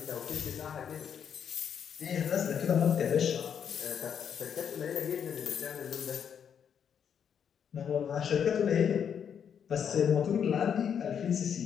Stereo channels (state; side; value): quieter; right; 7.9 dB